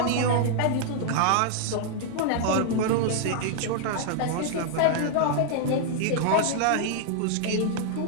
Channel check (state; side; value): different; both; correlation -0.01